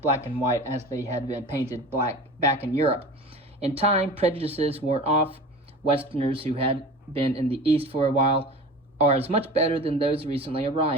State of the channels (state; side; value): normal; both; correlation 0.36